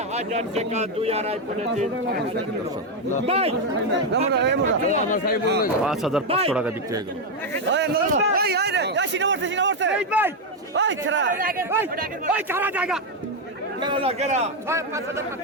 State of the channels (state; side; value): normal; both; correlation 0.04